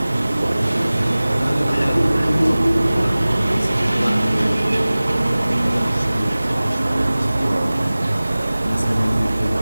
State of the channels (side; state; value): both; inverted; correlation -0.98